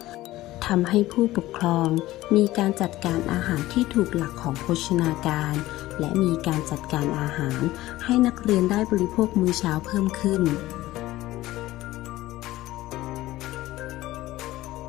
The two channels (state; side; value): quieter; right; 16.6 dB